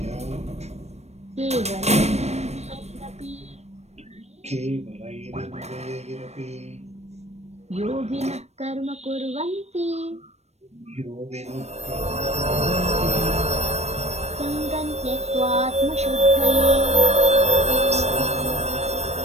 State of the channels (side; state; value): left; late; 0.31 ms